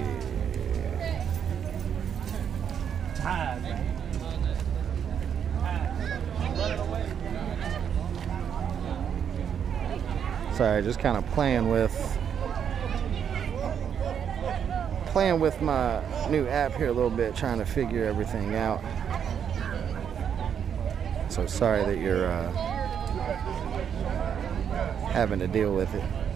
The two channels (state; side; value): quieter; left; 8.1 dB